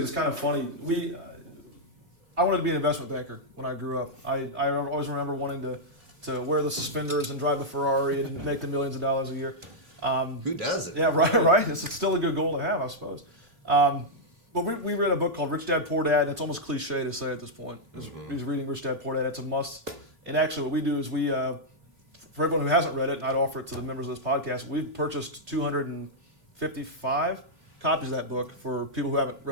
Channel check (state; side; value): late; left; 3.1 ms